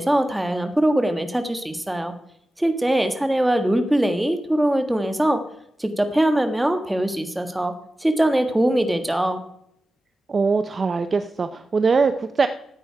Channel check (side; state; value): both; normal; correlation 0.95